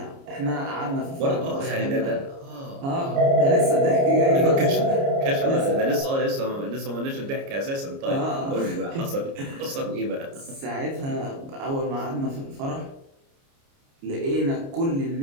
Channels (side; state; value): left; late; 29 ms